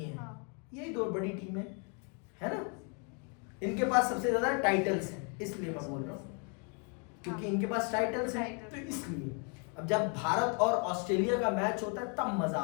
यही दो बड़ी टीमें है ना, इनके पास सबसे ज्यादा टाइटल्स हैं, इसलिए मैं बोल रहा हूँ क्योंकि इनके पास टाइटल्स हैं तो इसलिए। अब जब भारत और ऑस्ट्रेलिया का मैच होता है तब मजा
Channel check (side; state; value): right; quieter; 37.9 dB